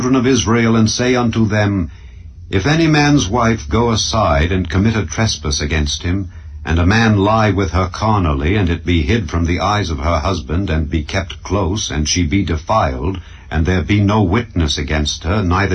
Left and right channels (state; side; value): identical; both; correlation 1.00